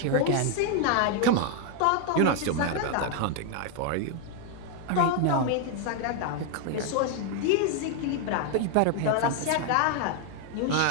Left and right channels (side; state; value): both; different; correlation 0.00